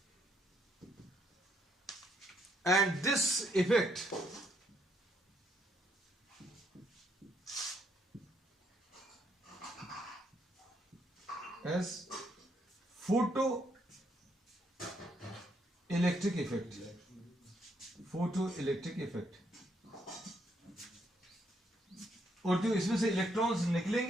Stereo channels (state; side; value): normal; both; correlation 0.73